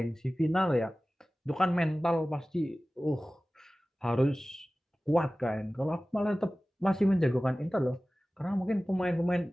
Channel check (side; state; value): both; normal; correlation 0.97